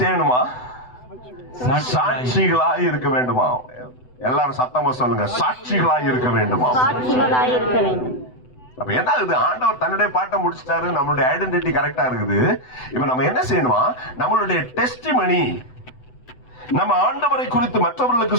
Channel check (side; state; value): right; late; 7.9 ms